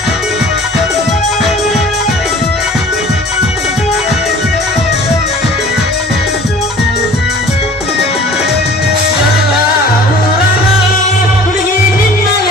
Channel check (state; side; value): normal; both; correlation 0.47